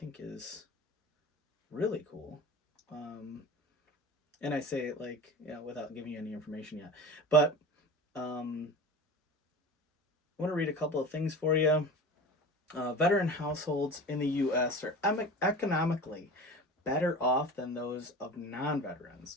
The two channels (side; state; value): both; normal; correlation 0.34